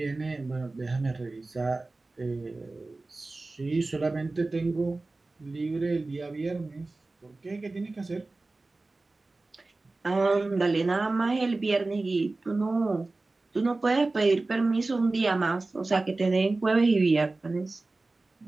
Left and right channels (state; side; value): quieter; left; 3.3 dB